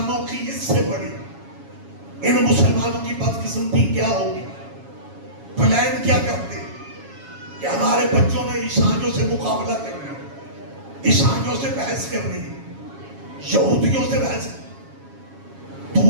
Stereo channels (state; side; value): late; left; 7.2 ms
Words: کی اس سے بڑی، ان مسلمانوں کی بدقسمتی کیا ہوگی؟ پلان کیا کرتے کہ ہمارے بچوں نے عیسائیوں سے مقابلہ کرنا، عیسائیوں سے بحث کرنی، یہودیوں سے بحث، تو